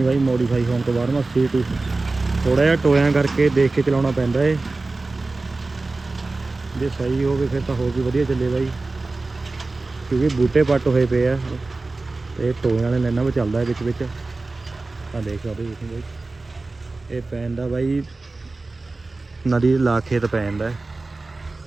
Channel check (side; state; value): left; quieter; 3.4 dB